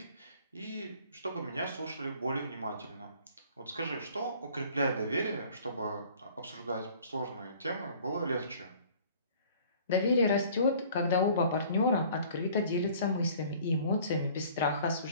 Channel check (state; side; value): inverted; both; correlation -0.52